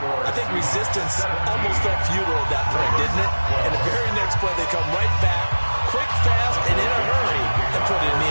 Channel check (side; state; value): both; inverted; correlation -1.00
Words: think resistance almost felt futile at that point, didn't it? And the very next play, they come right back, quick, fast, and in a hurry, and put it in the